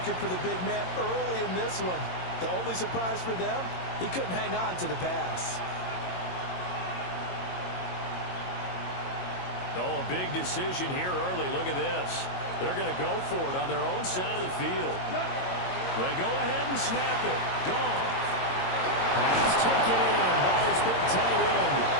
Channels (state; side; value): late; right; 22 ms